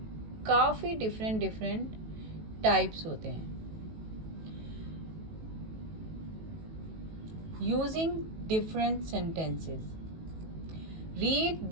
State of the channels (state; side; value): late; left; 18 ms